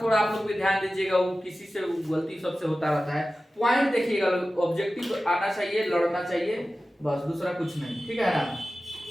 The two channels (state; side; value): normal; both; correlation 0.95